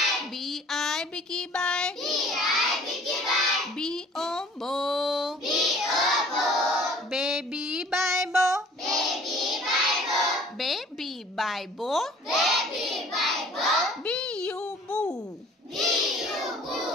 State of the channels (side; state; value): both; normal; correlation 0.52